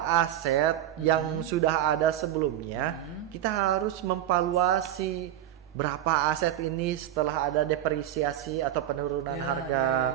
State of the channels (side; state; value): left; quieter; 11.9 dB